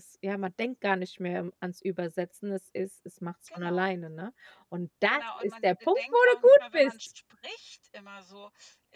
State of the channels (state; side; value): identical; both; correlation 1.00